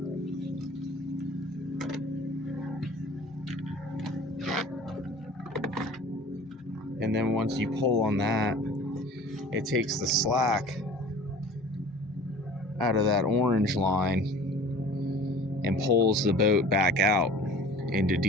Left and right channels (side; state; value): both; normal; correlation 0.44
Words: And then once you pull on that, it takes the slack out of that orange line and pulls the boat back out into